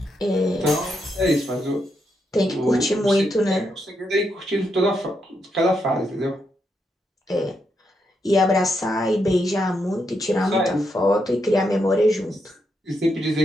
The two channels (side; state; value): both; normal; correlation 0.81